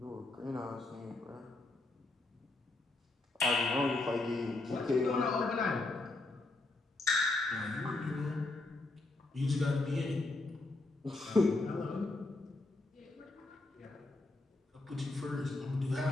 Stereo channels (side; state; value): right; quieter; 3.0 dB